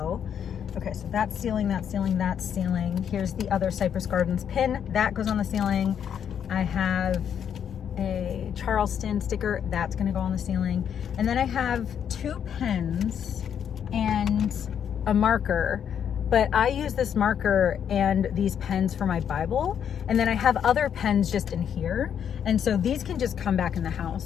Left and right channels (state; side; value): quieter; right; 8.5 dB